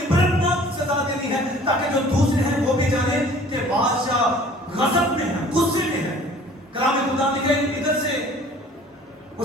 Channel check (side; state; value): both; normal; correlation 0.50